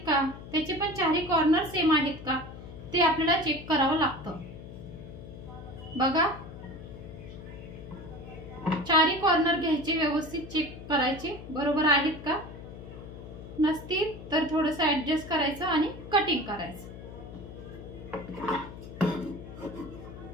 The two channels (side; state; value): left; noise; hum, 13 dB below the sound